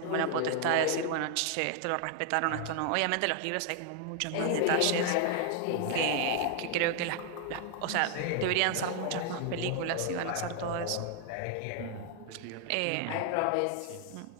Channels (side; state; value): both; different; correlation 0.00